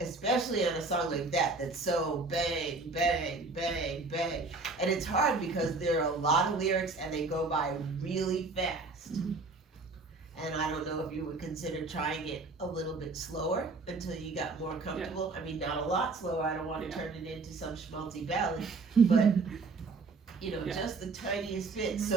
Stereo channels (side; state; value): left; quieter; 3.7 dB